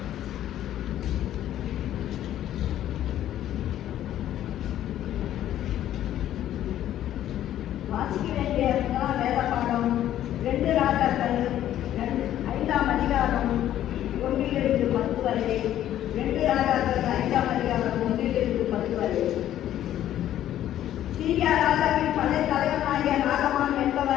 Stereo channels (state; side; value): quieter; right; 12.1 dB